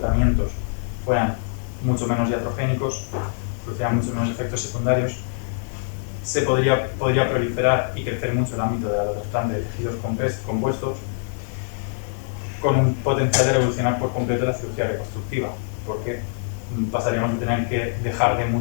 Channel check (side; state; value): right; silent; digital silence